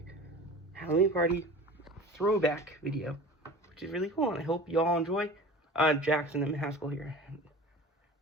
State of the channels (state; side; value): normal; both; correlation 0.38